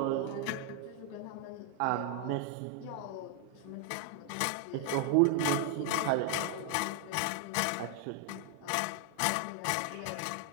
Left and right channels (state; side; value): different; both; correlation 0.00